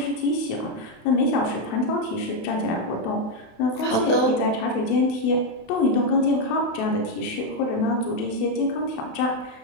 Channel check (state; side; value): late; right; 27 ms